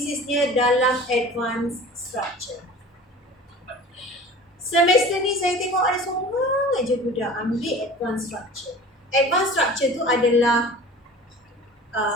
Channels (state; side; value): normal; both; correlation 0.41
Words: dalam advanced structure. Semester ni saya tengok ada seorang aja budak ambil advanced structure. Advanced structure tu adalah